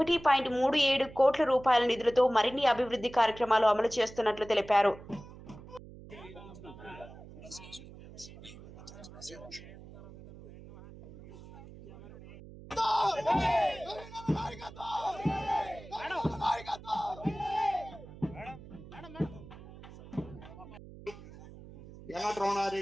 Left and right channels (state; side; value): noise; right; hum, 17 dB below the sound